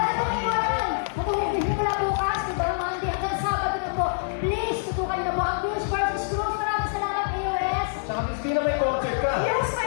pong iwanan. Matulungin mo na bukas, di ba? Monday hanggang Sabado na po. Please, tutukan na po ang Cruz versus Cruz. Maraming salamat, AOS. Saka Miss Vina, may concert ka. Yes,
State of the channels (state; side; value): silent; right; digital silence